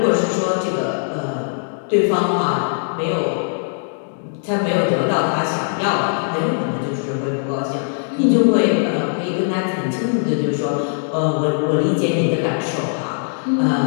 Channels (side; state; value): right; silent; digital silence